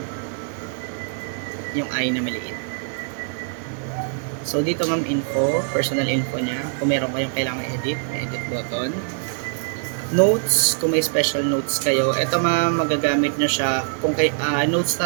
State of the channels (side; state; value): left; silent; 60 dB below the other